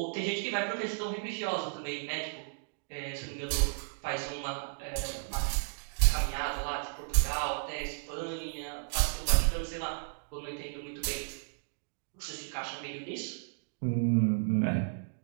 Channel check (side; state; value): left; silent; digital silence